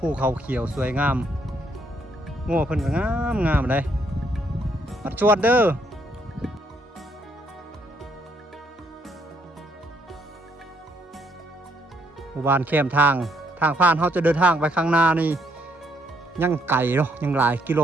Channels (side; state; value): both; normal; correlation 0.71